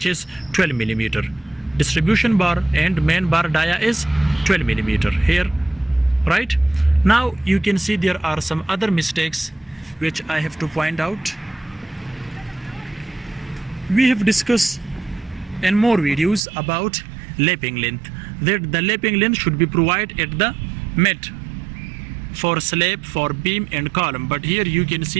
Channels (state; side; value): drops out; left; at 16.4 s